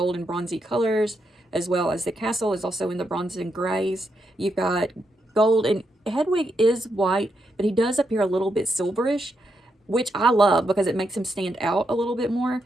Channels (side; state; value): both; normal; correlation 0.81